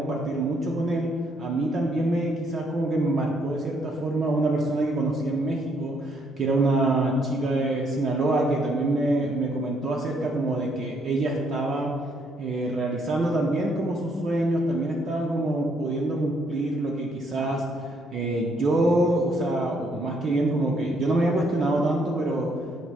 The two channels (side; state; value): both; normal; correlation 0.71